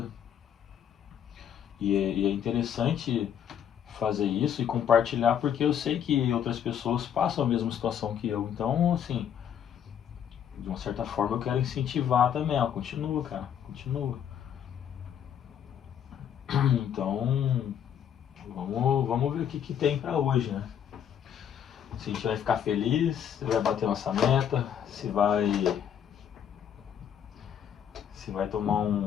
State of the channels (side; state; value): right; quieter; 9.0 dB